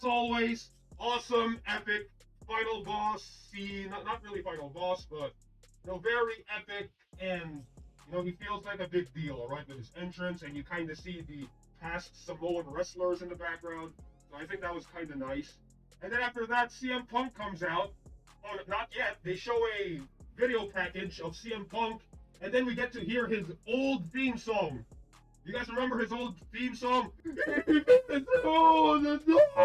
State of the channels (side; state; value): both; identical; correlation 1.00